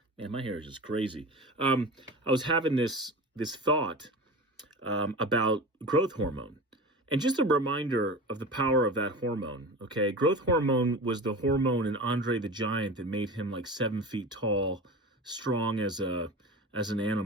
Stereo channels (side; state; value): both; normal; correlation 0.31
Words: my hair is just crazy. I was having this thought about growth hormone, and just a reminder of the power of that hormone. Okay, growth hormone was the hormone in Andre the Giant that made him like 7 feet tall, strong as an